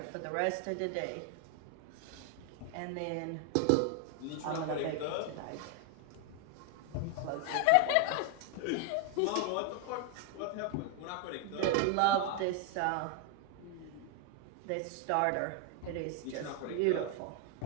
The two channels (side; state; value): both; different; correlation 0.01